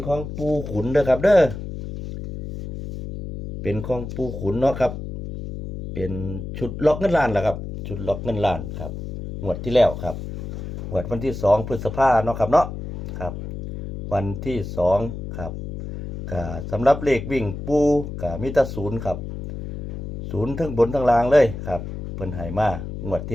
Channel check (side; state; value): left; noise; hum, 8 dB below the sound